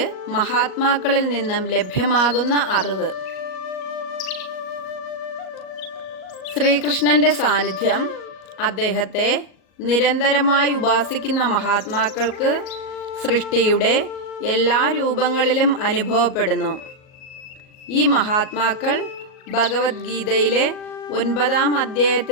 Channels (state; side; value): late; right; 38 ms